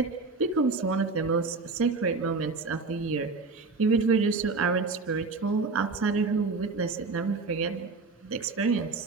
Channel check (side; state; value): left; quieter; 4.1 dB